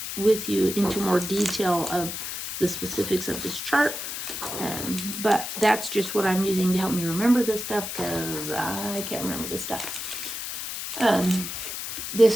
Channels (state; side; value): noise; left; hiss, 6 dB below the sound